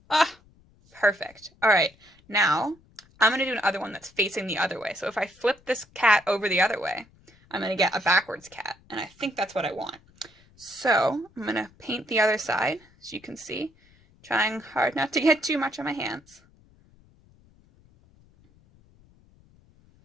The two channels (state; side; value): noise; left; rumble, 29 dB below the sound